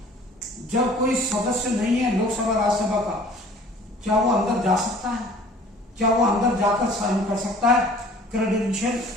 जब कोई सदस्य नहीं है लोकसभा राज्यसभा का, क्या वो अंदर जा सकता है? क्या वो अंदर जाकर साइन कर सकता है? क्रेडेंशियल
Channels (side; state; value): both; normal; correlation 0.50